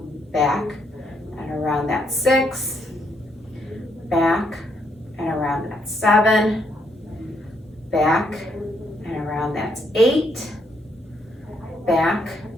back, and around, that's 6, back, and around, that's 7, back, and around, that's 8, back,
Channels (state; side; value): normal; both; correlation 0.74